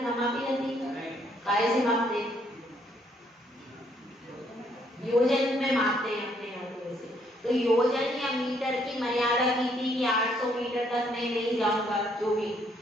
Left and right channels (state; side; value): normal; both; correlation 0.69